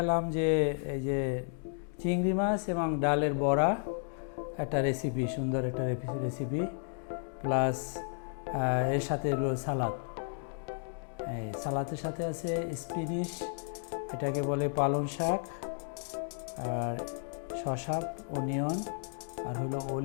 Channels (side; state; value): right; silent; digital silence